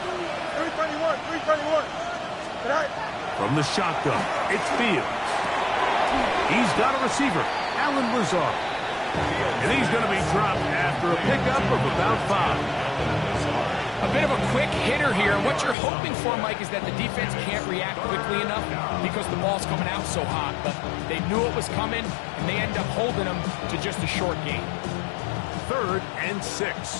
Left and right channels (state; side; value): drops out; right; at 15.8 s